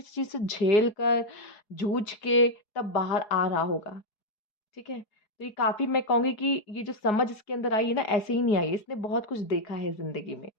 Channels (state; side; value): late; right; 4.7 ms